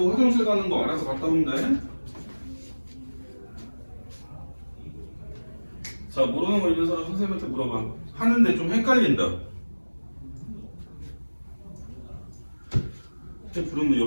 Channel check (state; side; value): inverted; both; correlation -1.00